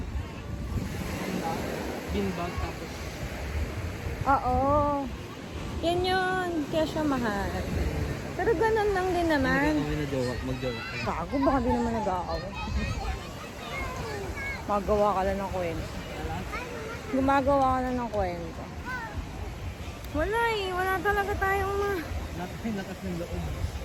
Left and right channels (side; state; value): both; identical; correlation 1.00